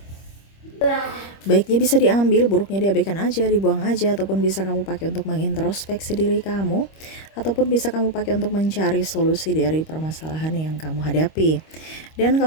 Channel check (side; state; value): right; late; 25 ms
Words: Baiknya bisa diambil, buruknya diabaikan aja, dibuang aja, ataupun bisa kamu pakai untuk mengintrospeksi diri kamu, ataupun bisa kamu pakai untuk mencari solusi dari permasalahan yang kamu hadapi. Dan